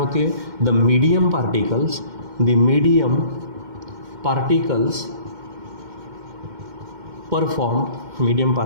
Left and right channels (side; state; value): left; late; 2.1 ms